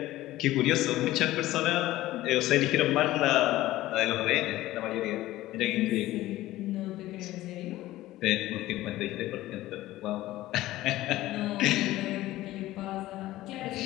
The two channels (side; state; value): right; quieter; 16.2 dB